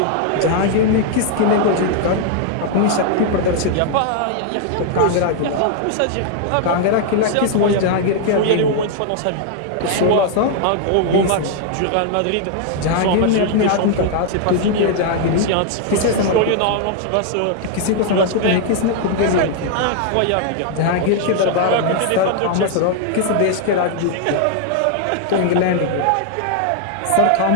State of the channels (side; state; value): both; different; correlation 0.00